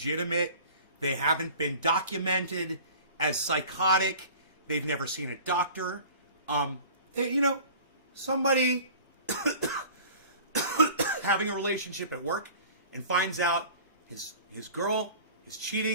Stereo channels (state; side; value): inverted; both; correlation -0.43